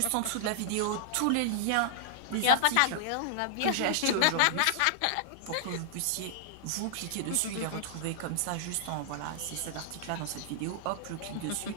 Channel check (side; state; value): both; different; correlation -0.01